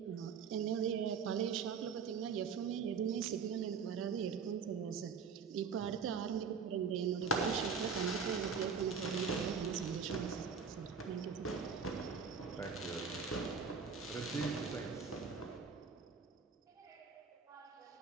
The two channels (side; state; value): left; quieter; 5.9 dB